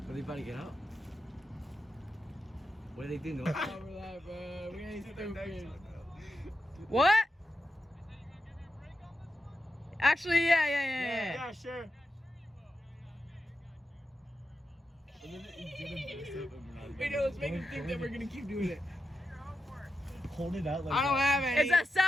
Are they about to get out? What are they doing? What? Actually, yeah. Yeah, sure. Wait, no, let's make him think that we're gonna keep doing it. Hold it out like I don't have any. It's a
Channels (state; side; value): normal; both; correlation 0.89